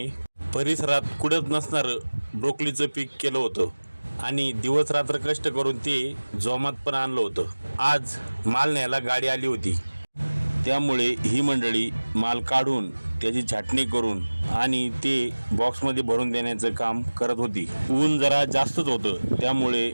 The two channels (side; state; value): both; inverted; correlation -1.00